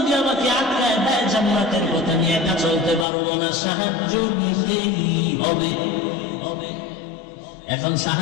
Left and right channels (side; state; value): right; drops out; at 3.1 s